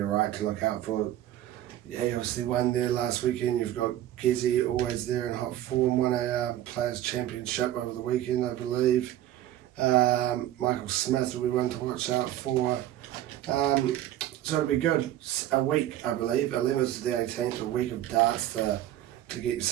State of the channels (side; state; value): left; quieter; 13.0 dB